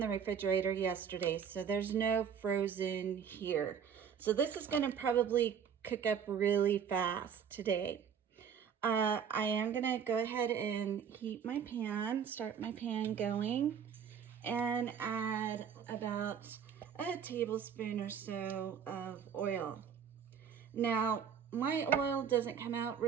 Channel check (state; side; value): quieter; left; 7.6 dB